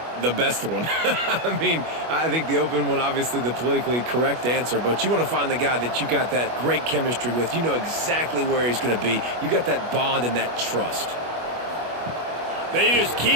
The best one. I mean, I think the open one, obviously the politically correct answer, but you want to find the guy that you got that great chemistry with. You know exactly where he's going to be. You got that bond and that trust. They just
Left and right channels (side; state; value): left; late; 25 ms